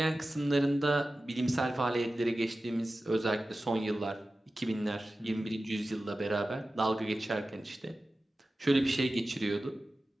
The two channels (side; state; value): both; normal; correlation 0.95